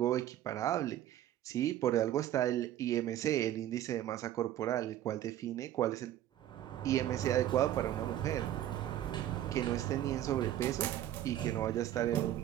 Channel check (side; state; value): left; quieter; 12.4 dB